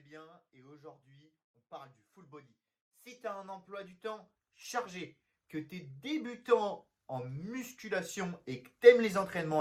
bien et aujourd'hui on parle du full body. Si tu as un emploi du temps chargé, que tu es débutant en musculation et que tu aimes les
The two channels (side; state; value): both; identical; correlation 1.00